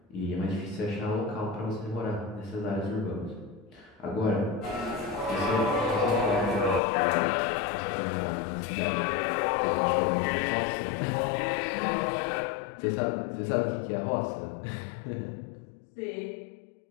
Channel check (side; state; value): right; drops out; at 6.8 s